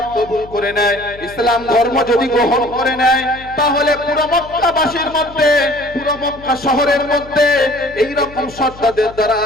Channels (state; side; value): noise; left; hum, 19 dB below the sound